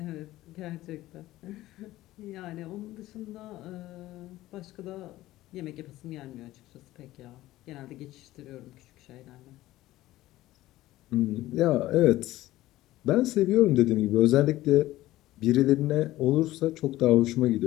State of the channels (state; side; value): quieter; right; 16.1 dB